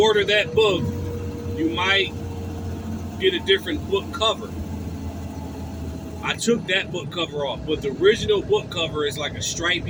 order that book, you might get a different book cover. I took that book cover off, but the original book cover is like a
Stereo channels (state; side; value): identical; both; correlation 1.00